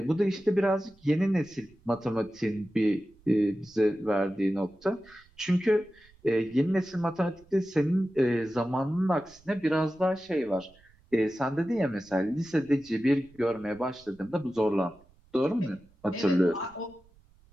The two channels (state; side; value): noise; right; rumble, 29 dB below the sound